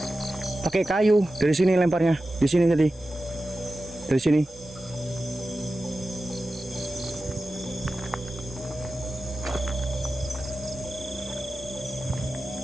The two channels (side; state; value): both; normal; correlation 0.94